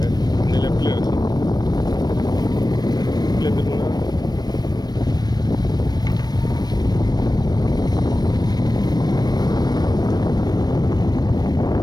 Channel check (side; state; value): right; late; 0.19 ms